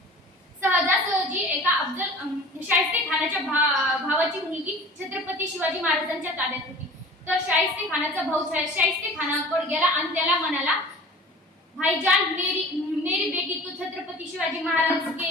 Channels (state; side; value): normal; both; correlation 0.41